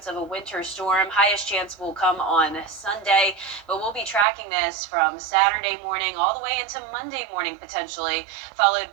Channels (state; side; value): drops out; left; at 4.2 s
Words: of a winter storm. Highest chance will come on Sunday, but we'll be tracking this from Saturday morning all the way into Monday morning potentially, followed